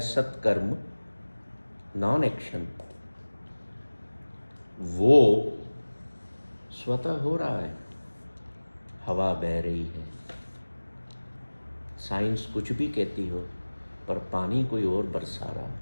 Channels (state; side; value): inverted; both; correlation -1.00